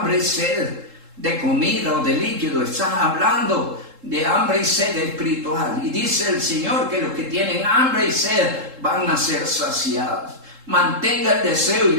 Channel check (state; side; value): late; left; 3.7 ms